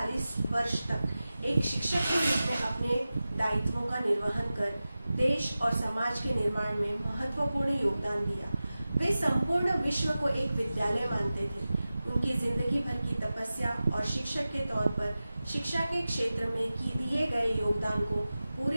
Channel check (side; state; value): both; inverted; correlation -0.95